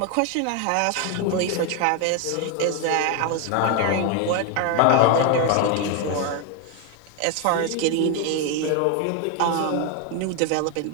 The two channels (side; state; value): both; different; correlation 0.01